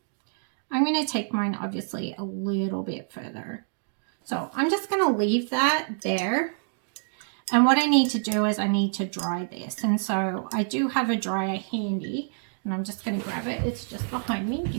I'm going to take mine obviously a little bit further. So I'm just going to leave that there. And what I need to do is I need to dry this. And so I do have a dryer handy, and I'm just going to grab it. It's just behind me.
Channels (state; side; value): silent; left; digital silence